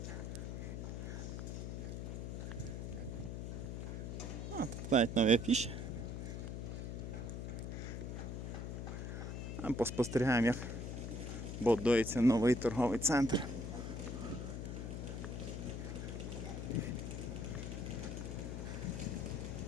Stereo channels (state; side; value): noise; left; hum, 5 dB below the sound